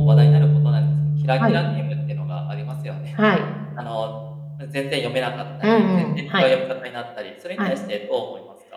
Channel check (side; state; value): both; identical; correlation 1.00